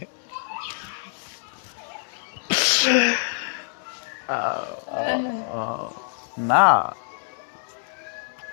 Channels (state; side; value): silent; right; 61 dB below the other